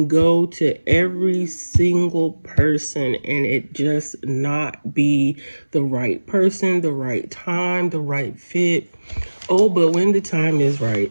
go to every single person and it just not be the right person, the right time, the right fit. Oh, but when the time is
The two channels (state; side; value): inverted; both; correlation -1.00